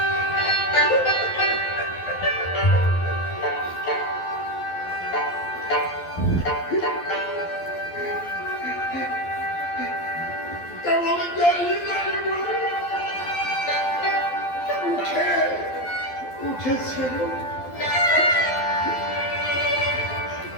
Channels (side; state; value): right; late; 12 ms